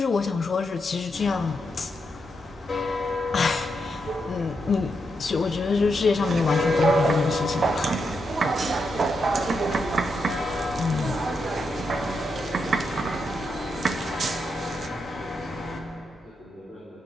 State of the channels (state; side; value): normal; both; correlation 0.83